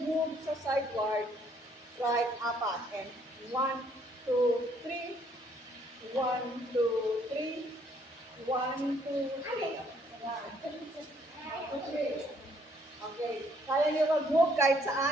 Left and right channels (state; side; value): normal; both; correlation 0.66